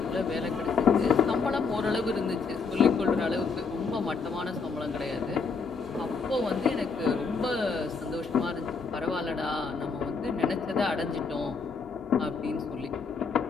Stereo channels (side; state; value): right; quieter; 4.9 dB